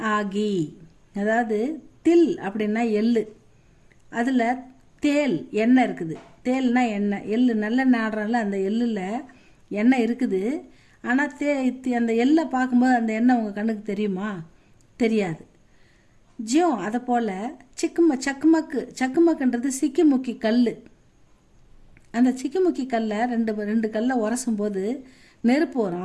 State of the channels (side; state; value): both; identical; correlation 1.00